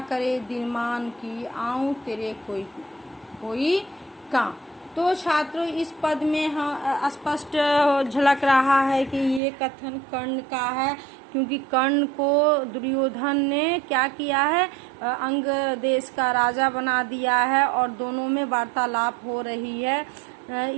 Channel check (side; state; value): left; drops out; at 9.4 s